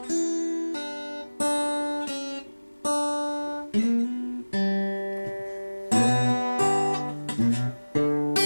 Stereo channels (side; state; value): both; inverted; correlation -1.00